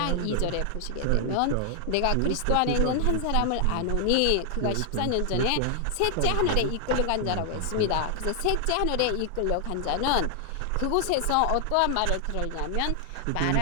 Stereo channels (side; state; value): both; different; correlation 0.00